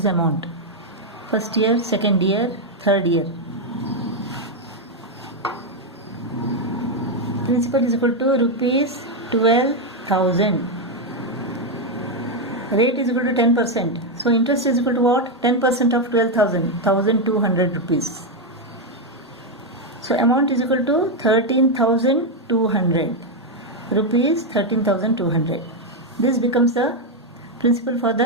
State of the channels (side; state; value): both; normal; correlation 0.03